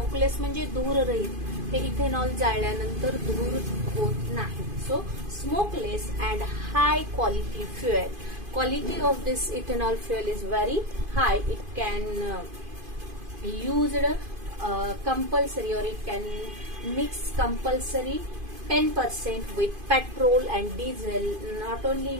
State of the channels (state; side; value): late; left; 2.5 ms